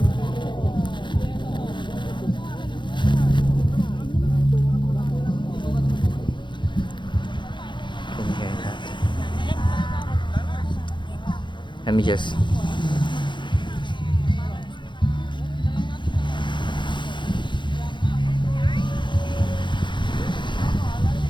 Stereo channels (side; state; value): right; late; 0.23 ms